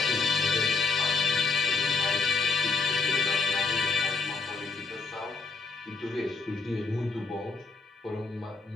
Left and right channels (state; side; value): quieter; right; 4.4 dB